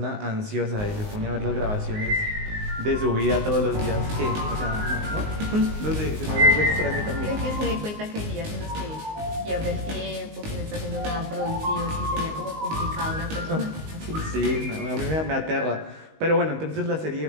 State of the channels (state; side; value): late; left; 19 ms